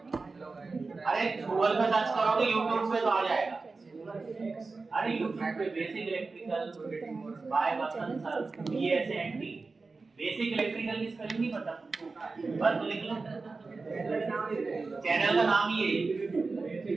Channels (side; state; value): left; quieter; 4.0 dB